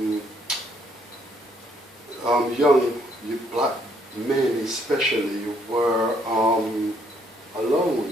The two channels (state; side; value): normal; both; correlation 0.68